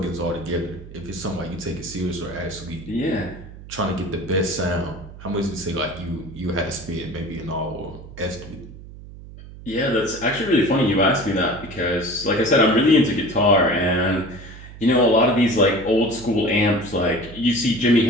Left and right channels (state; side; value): noise; right; hum, 16 dB below the sound